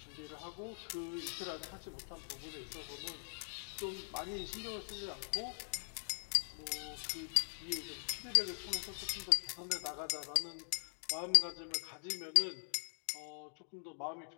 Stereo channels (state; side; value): silent; right; digital silence